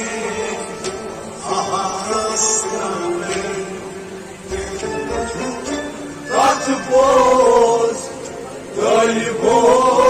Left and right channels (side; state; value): both; identical; correlation 1.00